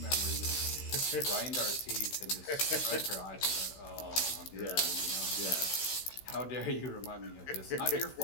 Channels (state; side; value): late; right; 16 ms